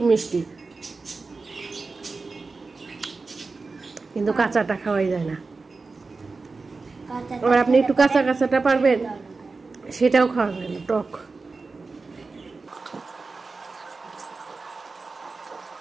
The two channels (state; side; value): quieter; left; 4.0 dB